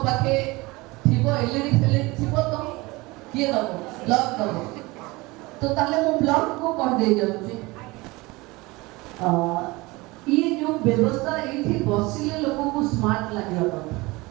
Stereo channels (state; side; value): quieter; left; 22.7 dB